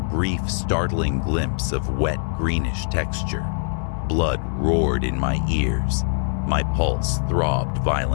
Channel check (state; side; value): silent; right; 63 dB below the other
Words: startling glimpse of wet, greenish texture. Blood roared in my ears. My pulse throbbed